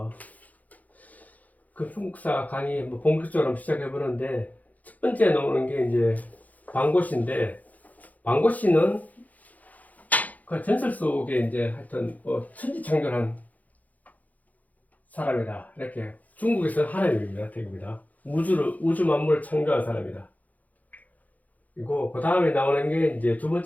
중국사 강의 본격적으로 한번 시작해 보는데, 첫 번째 나오는 게 이제 방고시인데, 방고시는 그 전설 속에 이제 하여튼 천지창조한 사람이다. 이렇게 중국에서 하나님입니다. 대입니다. 우주 만물을 창조한 사람이다. 그리고 그 다음에 나오는 게 이제 두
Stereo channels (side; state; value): right; late; 0.078 ms